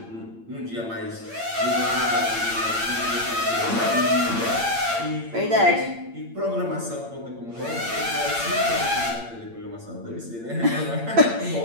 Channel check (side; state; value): left; late; 8.7 ms